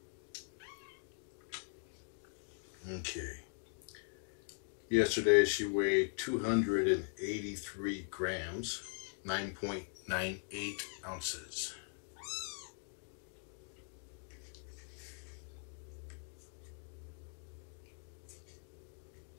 Okay. Yesterday she weighed 283 grams, 9.98 ounces.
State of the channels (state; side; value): silent; right; 51 dB below the other